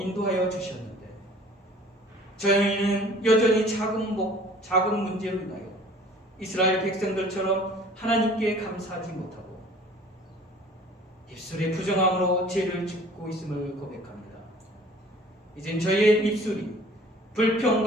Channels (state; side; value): normal; both; correlation 0.50